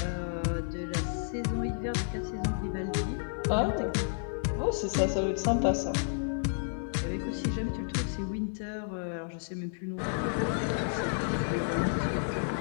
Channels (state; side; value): silent; right; digital silence